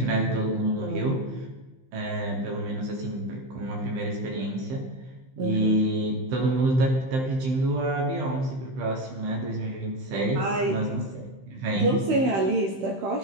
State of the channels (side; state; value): left; late; 15 ms